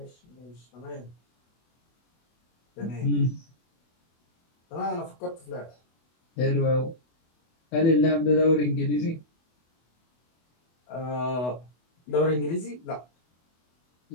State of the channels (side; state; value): right; late; 24 ms